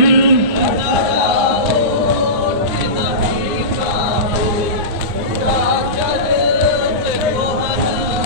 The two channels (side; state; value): left; late; 9.7 ms